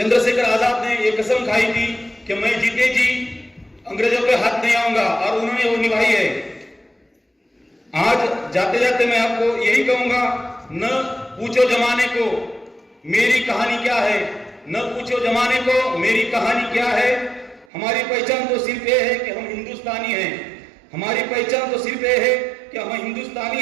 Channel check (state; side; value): drops out; left; at 17.7 s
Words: आजाद ने एक कसम खाई थी कि मैं जीते जी अंग्रेजों के हाथ नहीं आऊंगा और उन्होंने वो निभाई है. आज जाते जाते मैं आपको यही कहूंगा, न पूछो जमाने को मेरी कहानी क्या है, न पूछो जमाने को मेरी कहानी क्या है. हमारी पहचान तो सिर्फ ये है कि हम हिंदुस्तानी हैं. हमारी पहचान तो सिर्फ ये है कि हम हिंदुस्तानी